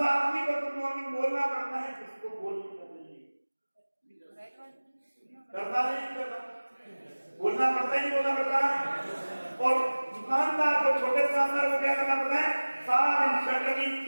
आदमी को गुड मॉर्निंग बोलना पड़ता है जिसको बोलना करता नहीं करता, बोलना पड़ता ही नहीं बोलना पड़ता। और दुकानदार को, छोटे दुकानदार को क्या करना पड़ता है? सारा दिन शटर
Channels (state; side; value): inverted; both; correlation -1.00